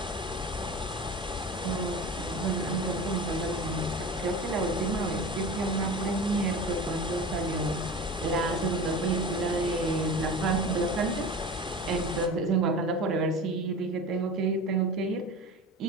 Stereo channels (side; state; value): both; normal; correlation 0.33